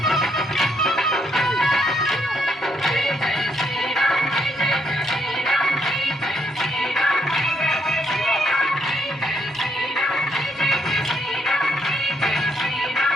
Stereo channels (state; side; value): normal; both; correlation 0.74